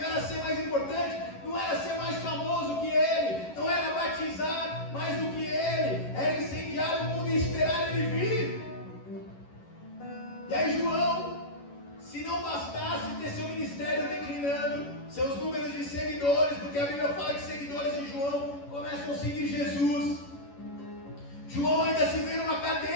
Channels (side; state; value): right; late; 11 ms